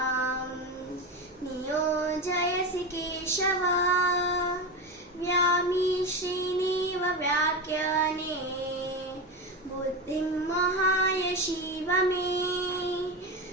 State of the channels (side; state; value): both; normal; correlation 0.19